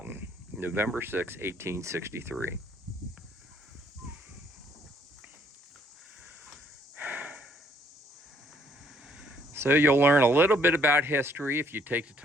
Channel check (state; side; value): normal; both; correlation 0.66